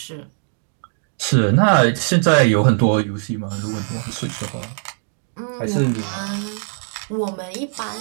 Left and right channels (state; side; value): silent; left; digital silence